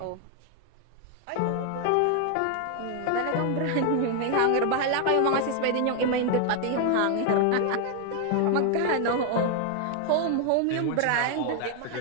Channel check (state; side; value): different; both; correlation 0.00